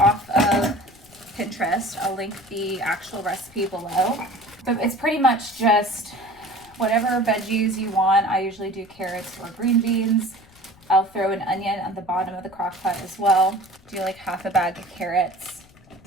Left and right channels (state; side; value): noise; left; rumble, 27 dB below the sound